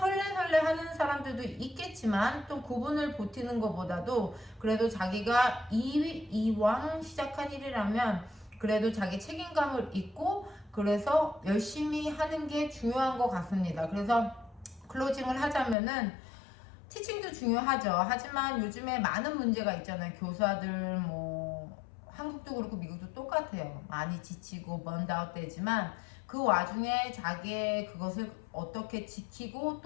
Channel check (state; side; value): drops out; right; at 15.8 s